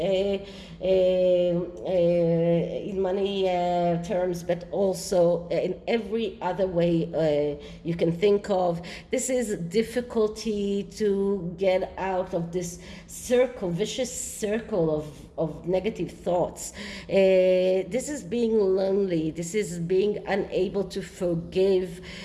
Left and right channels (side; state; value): both; identical; correlation 1.00